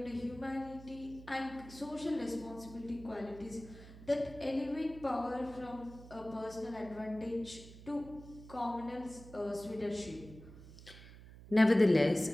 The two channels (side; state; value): right; noise; hum, 17 dB below the sound